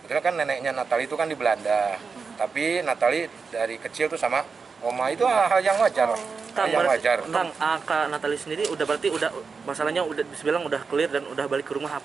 Betul kan, neneknya Natali itu kan di Belanda, tapi Natali dari kecil tuh sama oma, itu hal yang wajar. Yang wajar. Kang, Kak Natali sendiri berarti masalahnya udah dibilang udah clear dan udah balik ke rumah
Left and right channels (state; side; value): quieter; left; 5.1 dB